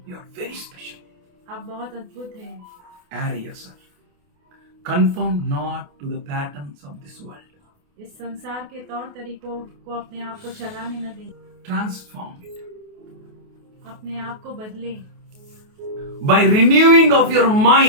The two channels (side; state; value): left; late; 28 ms